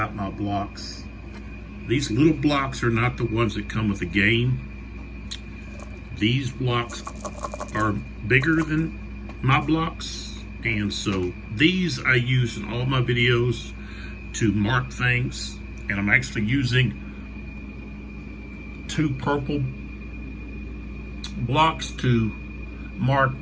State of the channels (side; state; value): both; identical; correlation 1.00